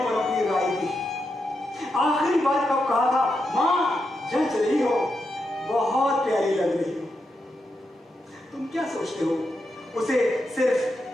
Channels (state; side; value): normal; both; correlation 0.85